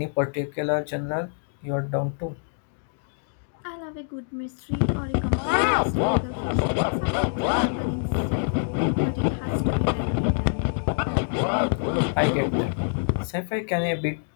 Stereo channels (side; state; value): right; silent; digital silence